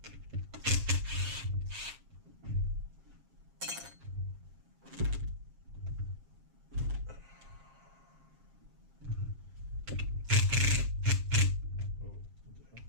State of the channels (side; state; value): left; late; 7.4 ms